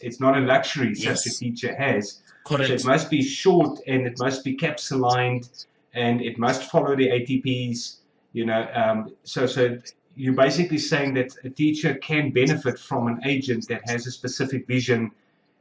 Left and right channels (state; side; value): identical; both; correlation 1.00